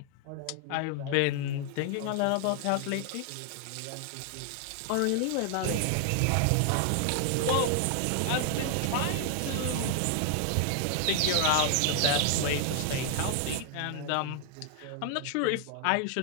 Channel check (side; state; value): both; different; correlation 0.00